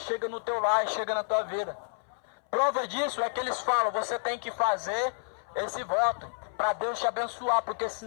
no teu lar, chega na tua vida. Prova disso é que eles falam, você tem que fazer esse voto para Deus te abençoar, porque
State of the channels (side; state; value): right; silent; 58 dB below the other